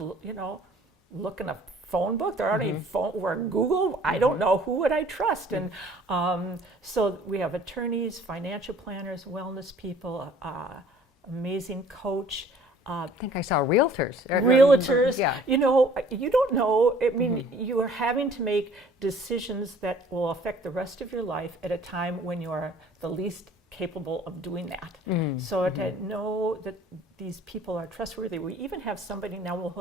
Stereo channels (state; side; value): normal; both; correlation 0.53